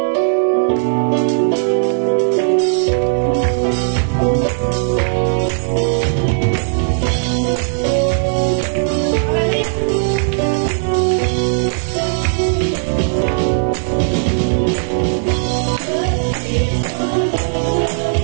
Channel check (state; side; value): silent; left; 56 dB below the other